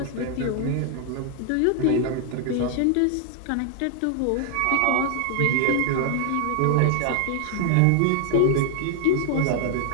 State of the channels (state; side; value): different; both; correlation 0.00